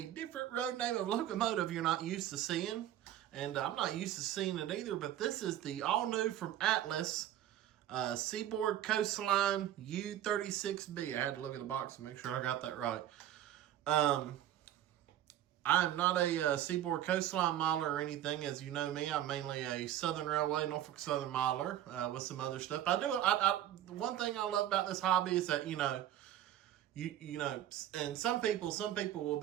different road name of locomotive you're not used to seeing. And I'm not used to seeing it either, but this is the all new from Atlas Seaboard Coastline U36B. I had to look at the box and make sure I got that right. I'm not a Seaboard Coastline miler or anything. As you know me, I'm mainly a Southern Railway, Norfolk Southern miler with some other stuff. One thing I love about this hobby is that, you know, and some people will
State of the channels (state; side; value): quieter; left; 12.0 dB